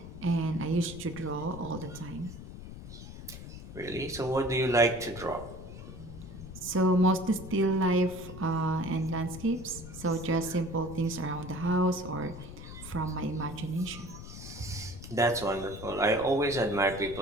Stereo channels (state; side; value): noise; left; rumble, 12 dB below the sound